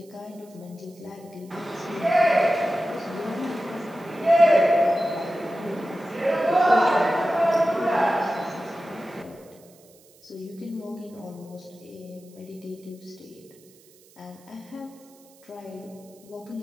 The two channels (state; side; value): noise; right; hiss, 28 dB below the sound